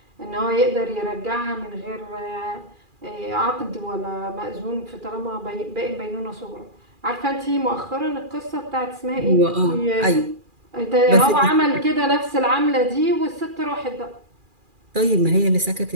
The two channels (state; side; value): late; left; 2.4 ms